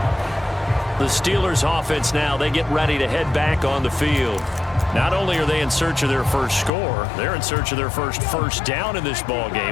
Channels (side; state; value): right; drops out; at 6.7 s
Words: The Steelers offense now, they get ready to head back on the field. Not only are they in search of their first score, they're in search of their first down in this ball